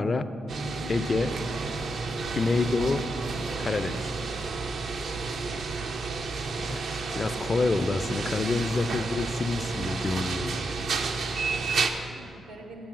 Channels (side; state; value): both; normal; correlation 0.83